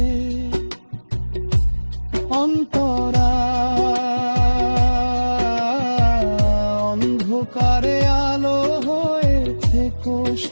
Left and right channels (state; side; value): inverted; both; correlation -1.00